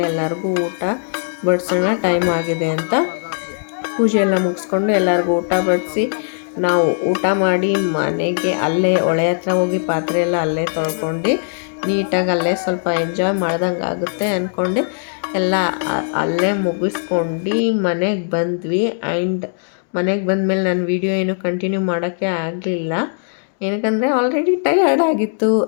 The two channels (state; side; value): silent; right; digital silence